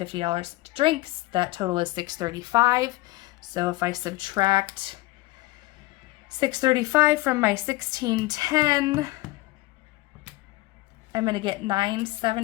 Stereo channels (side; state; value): right; quieter; 20.2 dB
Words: to drinks. That total is $635. So if I subtract $635 from my $1610, I'm going to get